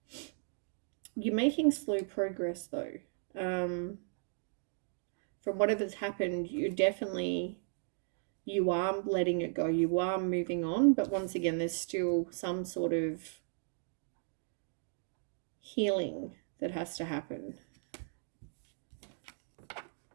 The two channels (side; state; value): left; silent; digital silence